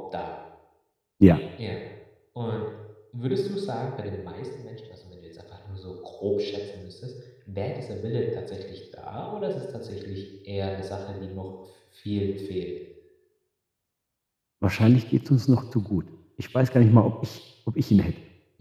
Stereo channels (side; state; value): both; identical; correlation 1.00